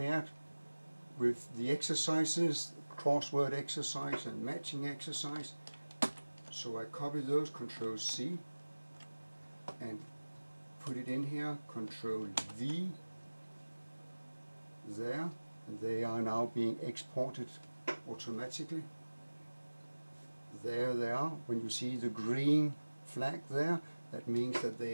with the exercises, crossword exercise and matching exercise. So I copy those, Ctrl C, and put it in here, Ctrl V, there, and they are now being exported automatically. There they are. When you see the green flag there, that means that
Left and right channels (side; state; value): both; inverted; correlation -1.00